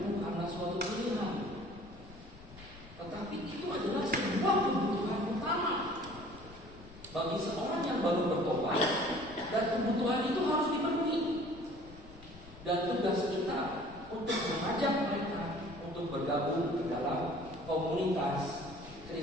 bukanlah suatu pilihan, tetapi itu adalah sebuah kebutuhan utama bagi seorang yang baru bertobat, dan kebutuhan itu harus dipenuhi. Dan tugas kita untuk mengajak mereka untuk bergabung ke dalam komunitas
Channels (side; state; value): left; noise; rumble, 20 dB below the sound